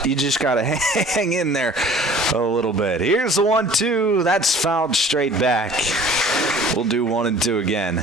you just got to hang in there a little bit. Here's the 1-2. That's fouled straight back. We'll do 1-2 again.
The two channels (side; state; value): both; normal; correlation 0.49